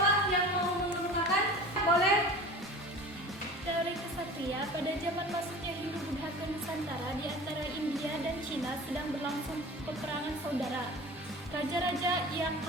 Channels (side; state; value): both; normal; correlation 0.38